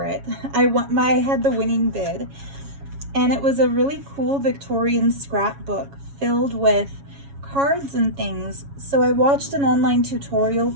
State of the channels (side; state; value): left; late; 7.2 ms